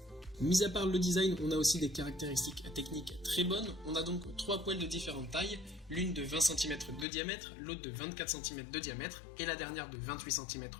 Mis à part le design, on a aussi des caractéristiques techniques très bonnes. On a donc 3 poêles de différentes tailles, l'une de 20 cm de diamètre, l'autre de 24 cm de diamètre et la dernière de 28 cm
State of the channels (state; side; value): drops out; right; at 7.1 s